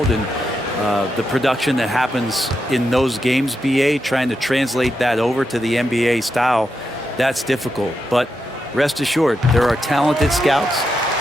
and the production that happens in those games, BA, trying to translate that over to the NBA style, that's difficult. But rest assured, there are talented scouts,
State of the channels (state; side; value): normal; both; correlation 0.85